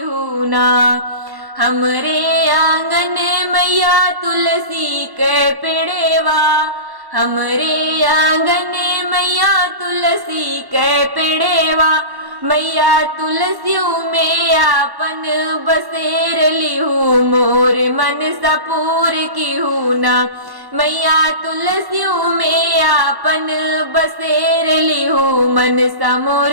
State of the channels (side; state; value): left; late; 1.1 ms